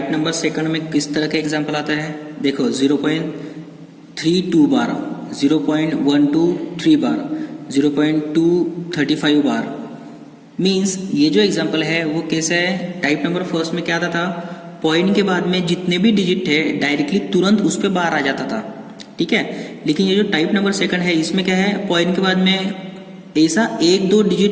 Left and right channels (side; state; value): both; identical; correlation 1.00